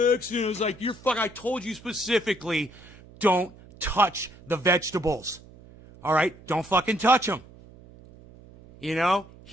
accident. I was like, I told you specifically, don't touch the vegetables. All right? Don't fucking touch them. You know?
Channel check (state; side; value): noise; right; hum, 22 dB below the sound